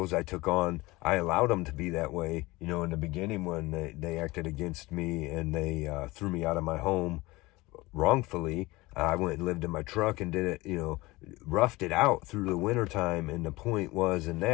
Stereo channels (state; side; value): quieter; right; 21.2 dB